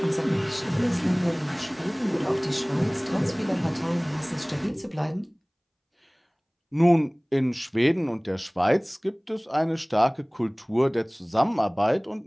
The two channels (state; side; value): identical; both; correlation 1.00